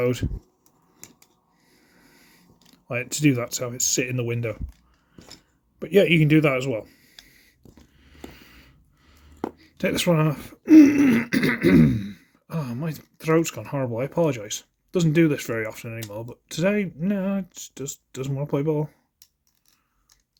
Like, to do that, to have it sit in the window. But yeah, you can do that as well. Take this one off. Oh, my throat's gone horrible. I apologise. Doesn't do this very often anymore, but today, no, it just doesn't want to play ball.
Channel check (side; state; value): both; identical; correlation 1.00